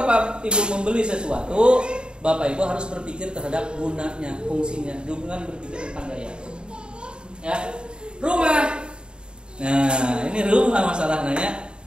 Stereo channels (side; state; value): left; late; 0.051 ms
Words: Ibu membeli sesuatu, Bapak Ibu harus berpikir terhadap gunanya, fungsinya, jangan berpikir tentang gaya. Ya, rumah Nah, ini rumah masalahnya ya.